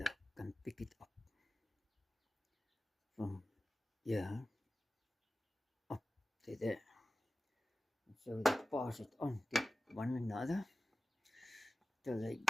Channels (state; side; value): normal; both; correlation 0.95